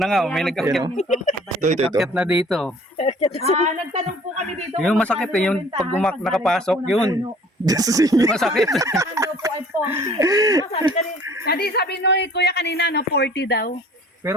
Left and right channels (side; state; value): both; normal; correlation 0.52